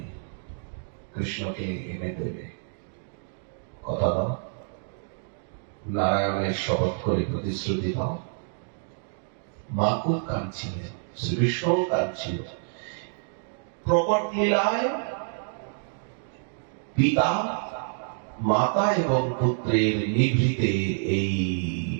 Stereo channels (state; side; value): silent; left; digital silence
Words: কৃষ্ণকে এনে দেবে, কথা দাও। নারায়ণের শপথ করে প্রতিশ্রুতি দাও। মা খুব কাঁদছিলেন, শ্রীকৃষ্ণ কাঁদছিল। প্রকট লীলায় পিতা মাতা এবং পুত্রের নিভৃতে এই